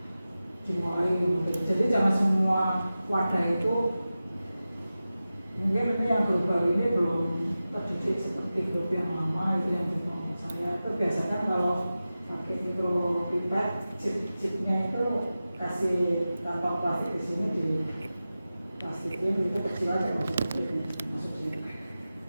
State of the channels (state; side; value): inverted; both; correlation -0.94